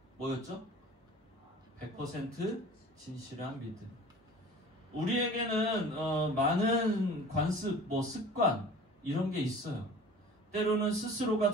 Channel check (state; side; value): normal; both; correlation 0.43